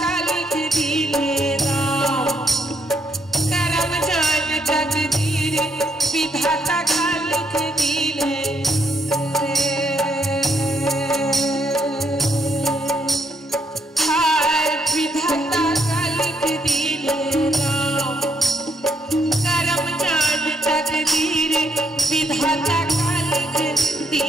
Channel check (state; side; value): normal; both; correlation 0.75